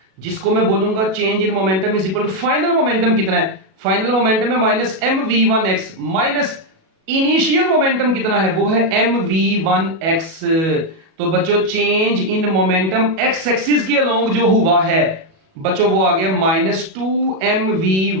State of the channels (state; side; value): late; left; 37 ms